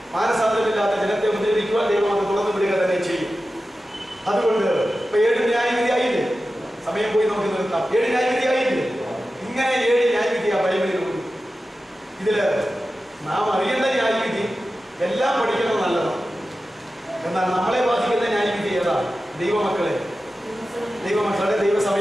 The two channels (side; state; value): both; normal; correlation 0.93